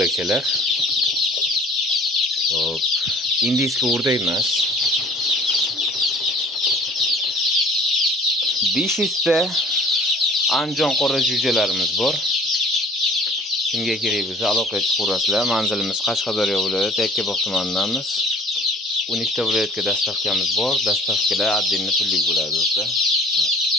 Hop, indiyskiy o'rdak emas. 500 ta Andijon qora jo'jalarimiz bor. Kimga kerak bo'lsa aloqa chiqarasizlar. Manzilimiz Qashqadaryo viloyati Yakkabog' tumanidamiz. 12 ta viloyatga dastavkamiz bor. Dastavkalar отдельно pullik bo'ladi do'stlar.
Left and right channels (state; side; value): normal; both; correlation 0.50